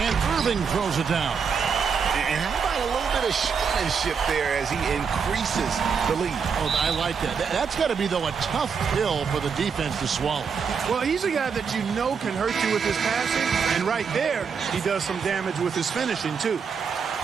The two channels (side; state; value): left; quieter; 6.1 dB